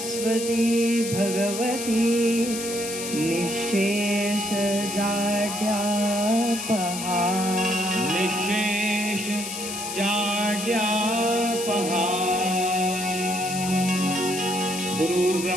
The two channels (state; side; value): noise; left; hiss, 6 dB below the sound